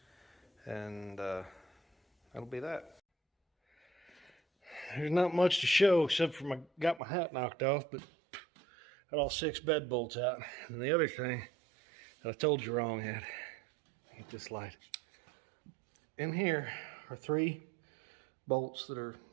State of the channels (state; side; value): drops out; left; at 7.0 s